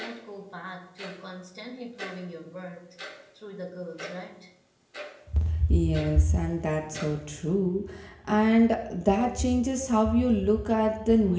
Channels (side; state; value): both; identical; correlation 1.00